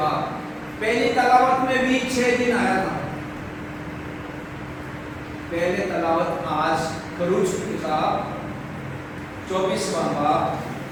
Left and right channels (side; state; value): both; identical; correlation 1.00